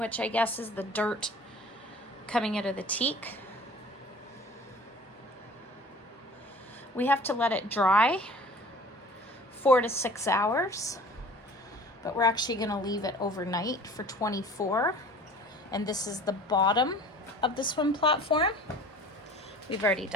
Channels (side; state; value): both; normal; correlation 0.45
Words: I guess is the dirt coming out of the teak. We have to let it dry 4 to 6 hours, but we're actually going to leave it overnight for 24. And this is the bottom of the swim platform. We've already